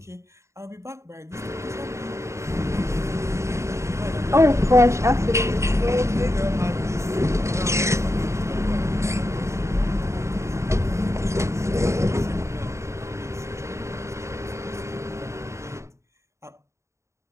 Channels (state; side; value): late; left; 0.14 ms